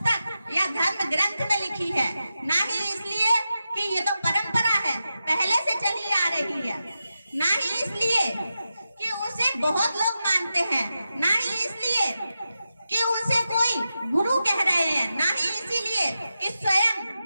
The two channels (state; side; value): inverted; both; correlation -0.90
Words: या धर्म ग्रंथ में लिखी है, ना ही इसलिए कि ये तो परंपरा है, पहले से चली आ रही है, ना ही इसलिए कि उसे बहुत लोग मानते हैं, ना ही इसलिए कि उसे कोई गुरु कह रहे हैं, ना ही इसीलिए कि स्वयं